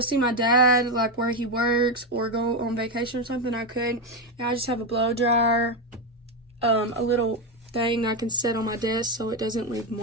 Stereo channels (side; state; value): both; normal; correlation 0.09